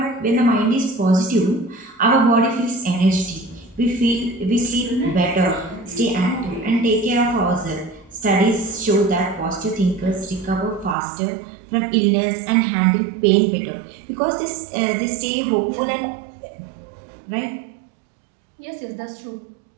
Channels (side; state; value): left; drops out; at 11.0 s